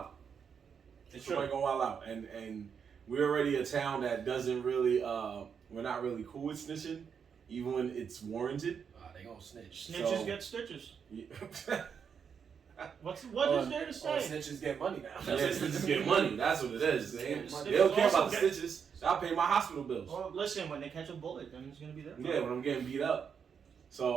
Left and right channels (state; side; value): quieter; left; 6.9 dB